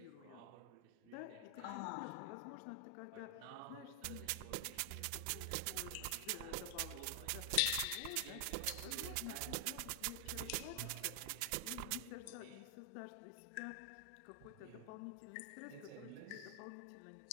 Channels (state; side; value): different; both; correlation 0.00